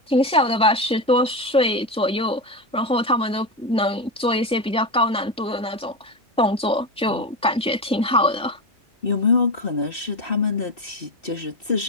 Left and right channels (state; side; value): normal; both; correlation 0.16